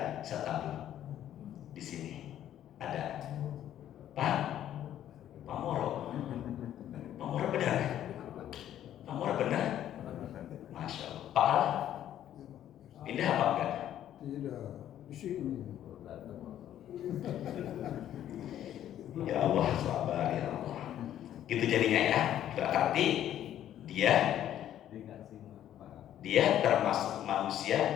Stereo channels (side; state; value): right; quieter; 11.4 dB